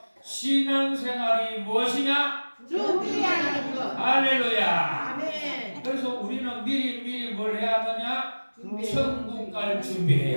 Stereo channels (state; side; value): inverted; both; correlation -1.00